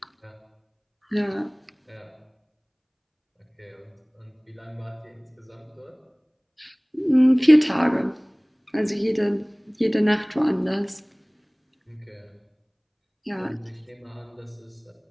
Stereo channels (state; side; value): identical; both; correlation 1.00